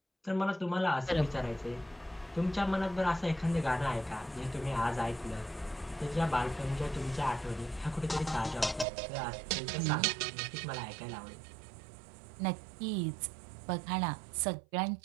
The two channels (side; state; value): left; drops out; at 8.8 s